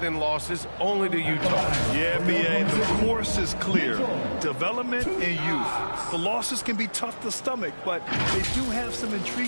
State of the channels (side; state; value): both; inverted; correlation -1.00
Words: in losses only to Utah. Yeah, B.A., the course is clear. Development and youth. The losses can be tough to stomach, but they do have some